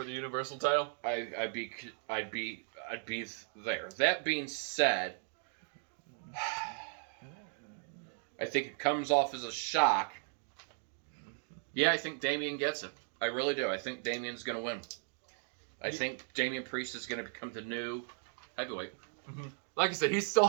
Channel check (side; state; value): left; silent; 53 dB below the other